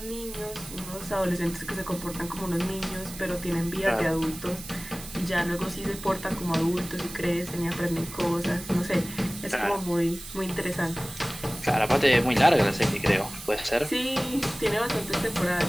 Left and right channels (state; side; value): noise; right; hiss, 13 dB below the sound